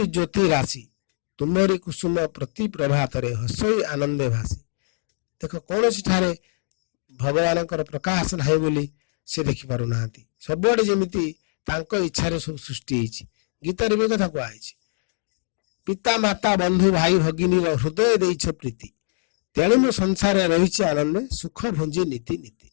ଜ୍ୟୋତି ରାଶି, ତୁମରି କୁସୁମ ପ୍ରତି ପ୍ରଭାତରେ ହସଇ ଆନନ୍ଦେ ଭାସି। ଦେଖ କୌଣସି ଠାରେ ଭଗବାନଙ୍କର ପ୍ରକାଶ ନାହିଁ ବୋଲି ସେ ଦେଖିପାରୁନାହାନ୍ତି। ସବୁଆଡେ ଯେମିତି ତାଙ୍କ ଇଚ୍ଛାରେ ସବୁ ସୃଷ୍ଟି ହେଇଛି। ଗୀତାରେ ବି କଥା କୁହାଯାଇଛି, ପିତା ମାତା ବନ୍ଧୁ ଭାଇ ଭଗିନୀର ହୃଦୟ ଦେଇଛ ପ୍ରୀତି, ତେଣୁ ମୁଁ ସଂସାରରେ ରହିଛି ଆନନ୍ଦେ ସୁଖ ଭୁଞ୍ଜି ନୀତି ନୀତି।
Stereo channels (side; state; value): right; silent; digital silence